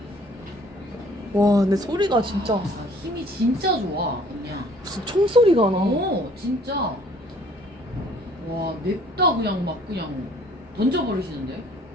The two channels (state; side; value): normal; both; correlation 0.57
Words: 와, 근데 소리가 진짜 아, 힘이 진짜 좋아, 그냥. 무슨 총소리가 나. 진짜. 와, 냅다 그냥 막 그냥 던져버리시는데?